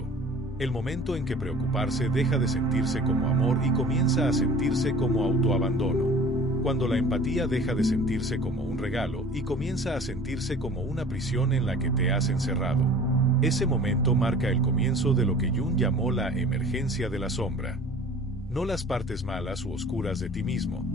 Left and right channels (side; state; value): both; normal; correlation 0.45